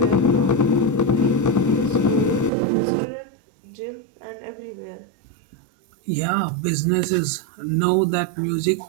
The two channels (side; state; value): left; drops out; at 2.5 s